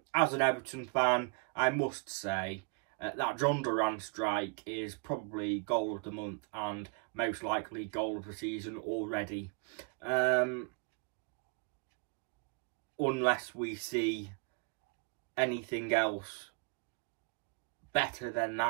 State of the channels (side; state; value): left; quieter; 31.4 dB